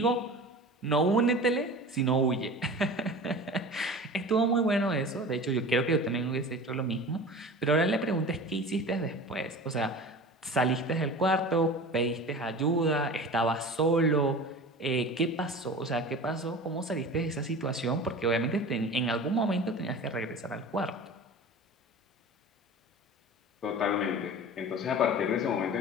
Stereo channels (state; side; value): normal; both; correlation 0.36